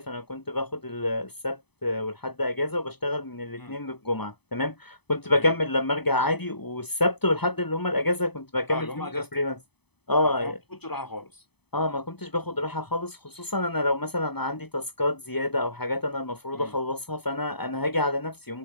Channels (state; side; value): late; right; 0.98 ms